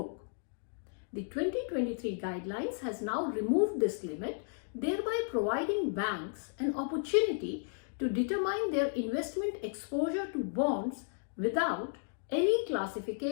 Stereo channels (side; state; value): right; silent; digital silence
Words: The 2023 guidelines has now removed this limit, thereby providing banks an opportunity to determine their investment exposure to bonds without any